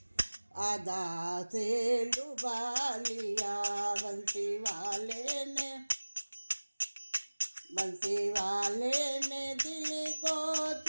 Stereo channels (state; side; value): inverted; both; correlation -1.00